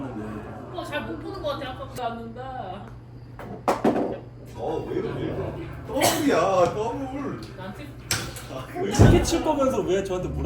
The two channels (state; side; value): identical; both; correlation 1.00